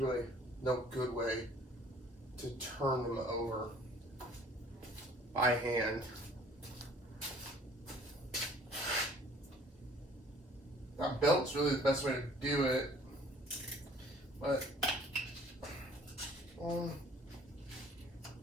no good way to turn them over by hand. That belt's really the best way to do it, but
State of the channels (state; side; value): normal; both; correlation 0.54